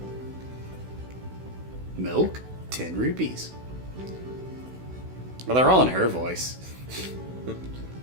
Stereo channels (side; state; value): left; late; 16 ms